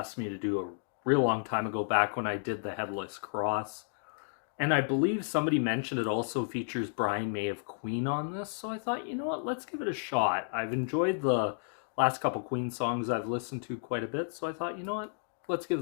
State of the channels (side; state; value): right; silent; digital silence